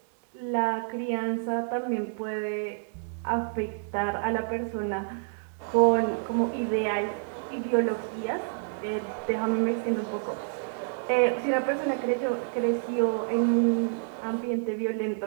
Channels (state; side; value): silent; left; digital silence